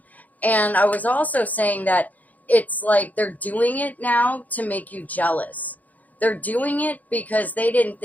And I was also saying that it's like they're doing it now to make you jealous. They're doing it because they didn't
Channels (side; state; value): right; late; 0.079 ms